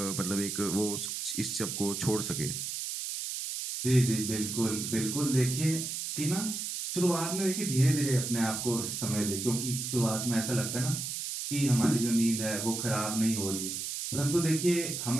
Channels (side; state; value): right; noise; hiss, 4 dB below the sound